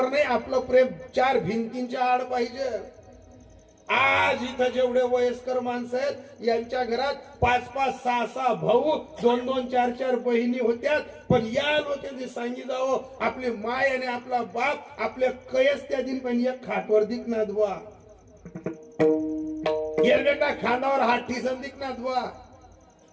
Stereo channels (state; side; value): identical; both; correlation 1.00